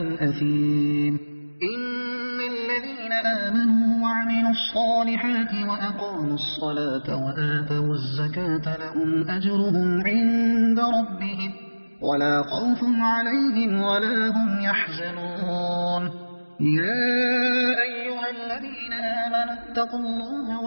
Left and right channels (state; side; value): inverted; both; correlation -1.00